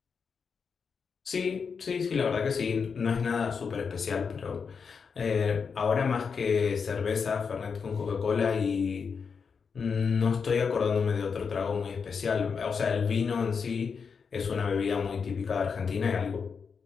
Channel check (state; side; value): quieter; right; 5.8 dB